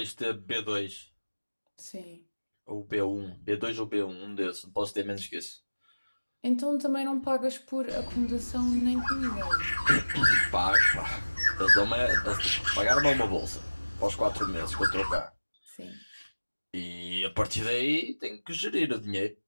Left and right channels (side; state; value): both; inverted; correlation -1.00